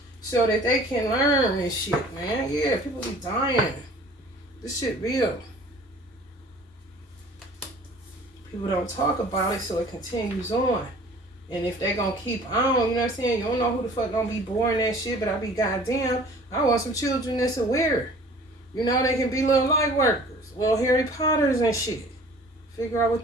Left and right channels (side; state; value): both; normal; correlation 0.49